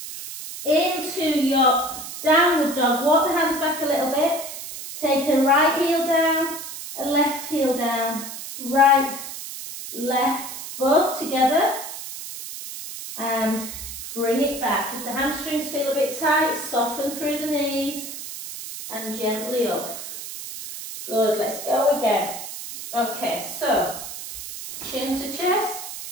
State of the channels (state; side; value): noise; right; hiss, 9 dB below the sound